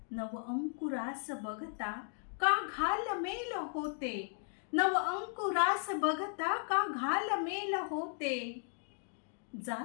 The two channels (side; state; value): right; silent; 54 dB below the other